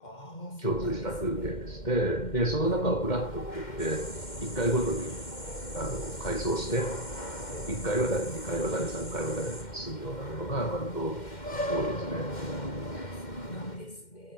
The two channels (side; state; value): right; late; 2.1 ms